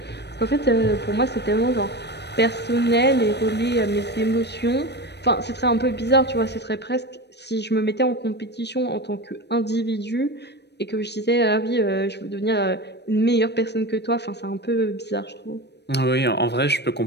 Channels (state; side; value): late; right; 0.49 ms